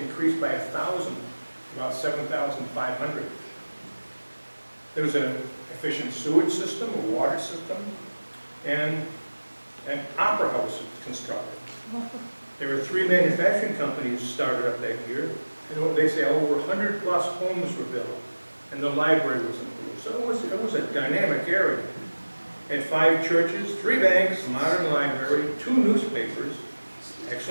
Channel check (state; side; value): inverted; both; correlation -1.00